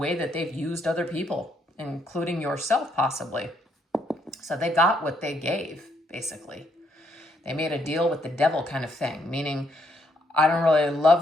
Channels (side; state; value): both; normal; correlation 0.73